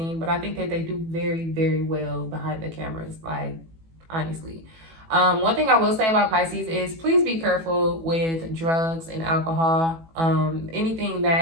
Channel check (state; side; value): late; left; 18 ms